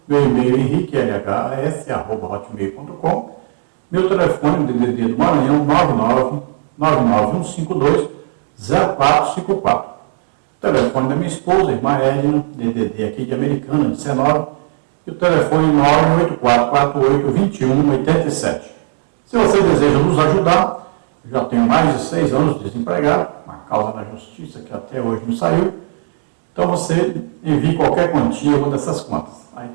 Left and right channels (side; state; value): left; silent; digital silence